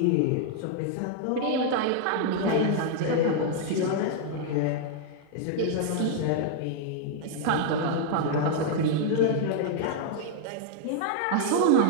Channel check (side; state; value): both; different; correlation 0.00